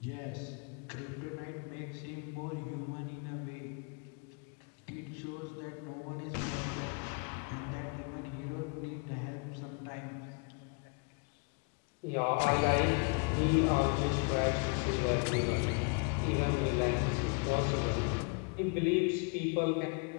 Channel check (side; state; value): right; quieter; 35.1 dB